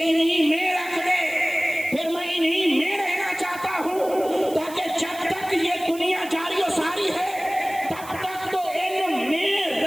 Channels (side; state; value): right; noise; hiss, 17 dB below the sound